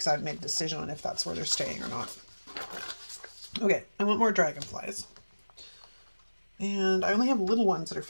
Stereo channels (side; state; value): both; inverted; correlation -1.00